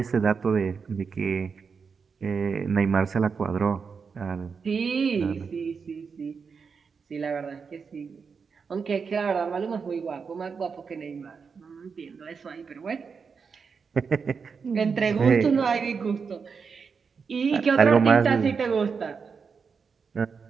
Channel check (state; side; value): quieter; left; 5.6 dB